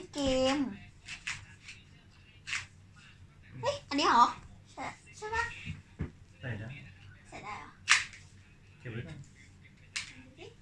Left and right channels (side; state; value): both; identical; correlation 1.00